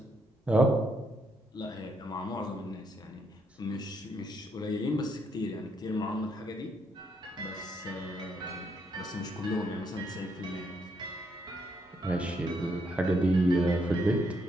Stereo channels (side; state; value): both; normal; correlation 0.75